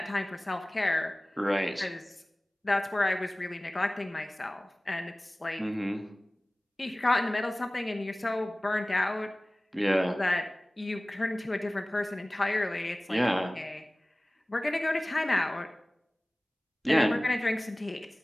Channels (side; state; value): both; normal; correlation 0.98